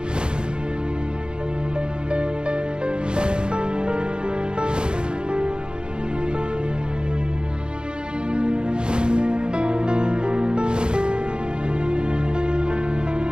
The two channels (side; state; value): left; late; 0.050 ms